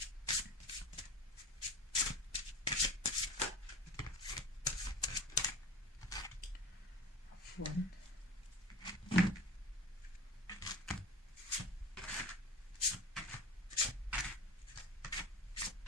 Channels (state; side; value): normal; both; correlation 0.36